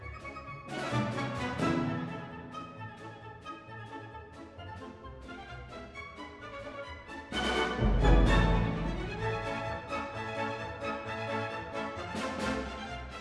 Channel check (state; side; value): identical; both; correlation 1.00